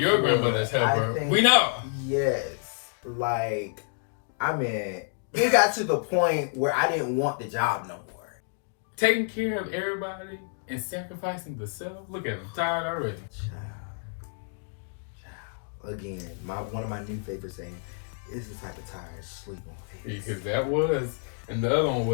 grandmother's helper. We know. Yes. Like, I mean, it got to the point where I didn't want the job no more. Taking care of everybody and sacrificing the self. Look at him, tired already. Child. Again, one of my new favorite sayings is the type of tired sleep on face. Because that was, and the other one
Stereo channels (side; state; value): right; silent; 59 dB below the other